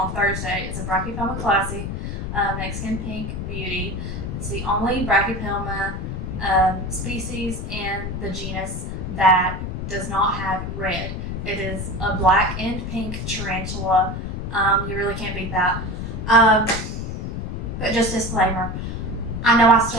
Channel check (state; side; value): noise; left; rumble, 5 dB below the sound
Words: Thursday. It's a Brachypelma klaasi, Mexican pink beauty. It's the only Brachypelma species in the genus that does not have red. It is a black and pink tarantula. You really can't beat that. But just disclaimer, I know I